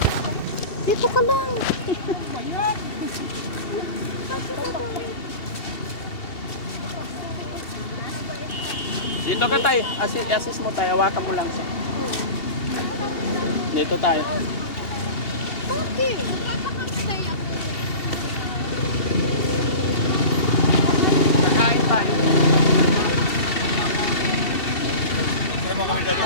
Dito ka lang. Dito ka tayo. Assist mo tayo. Hawakan mo lang siya. Dito tayo. Okay. Magpapakamatay ako. Kakain tayo. Pero kami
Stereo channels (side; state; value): right; late; 2.8 ms